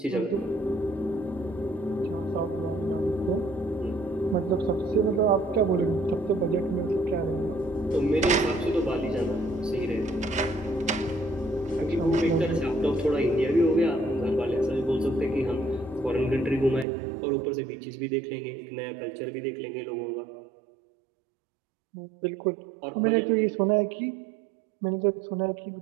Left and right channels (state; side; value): drops out; left; at 16.9 s